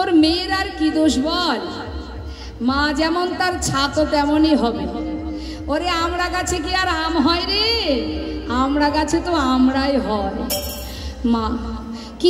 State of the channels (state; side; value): identical; both; correlation 1.00